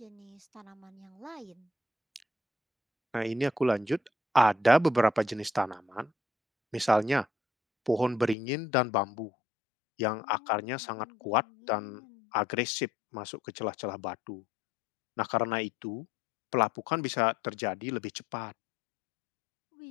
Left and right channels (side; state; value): right; drops out; at 8.3 s